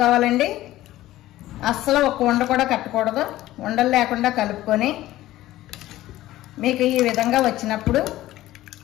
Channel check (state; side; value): quieter; right; 15.5 dB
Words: అస్సలు 1 ఉండ కూడా కట్టకూడదు. ఉండలు లేకుండా కలుపుకొని మీకు ఈ విధంగా వచ్చినప్పుడు